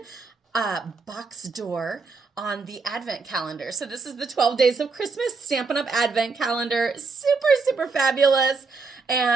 box door on the Advent calendar. So this is the 12 Days of Christmas Stampin' Up! Advent calendar. Super, super fabulous.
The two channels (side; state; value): left; quieter; 4.4 dB